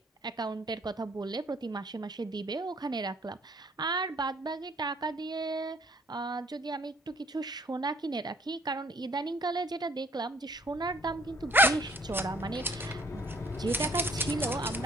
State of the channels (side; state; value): both; normal; correlation 0.61